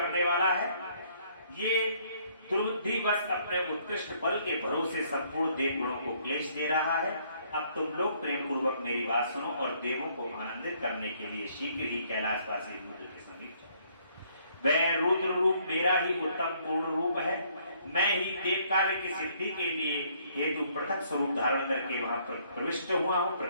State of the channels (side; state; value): both; inverted; correlation -0.65